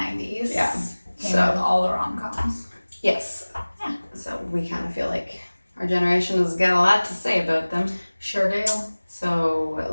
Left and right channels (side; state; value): both; inverted; correlation -1.00